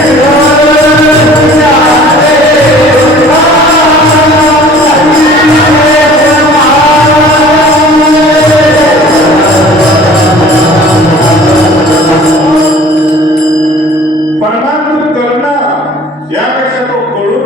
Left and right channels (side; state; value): both; normal; correlation 0.49